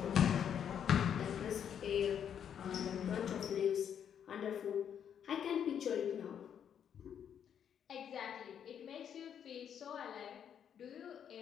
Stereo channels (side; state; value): right; quieter; 8.6 dB